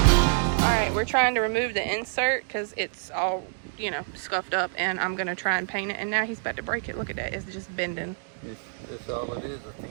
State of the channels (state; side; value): silent; left; 60 dB below the other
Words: Alright, we're trying to remove the insert because it's all, you know, scuffed up, and I'm going to try and paint it. And now he's about to break it. Look at that. It's just bending. That's all it is, a